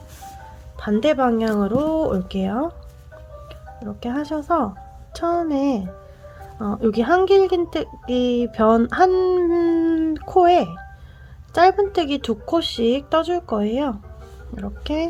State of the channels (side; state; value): both; identical; correlation 1.00